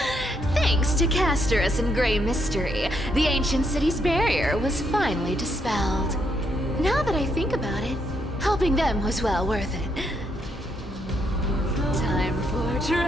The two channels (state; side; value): normal; both; correlation 0.76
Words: Thanks to Castorus and Grey Mystery, the ancient city's barrier was finally dispelled. Now that I think about it, helping them was well worth it. Time for